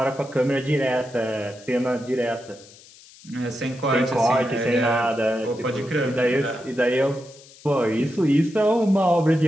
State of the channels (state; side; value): noise; left; hiss, 23 dB below the sound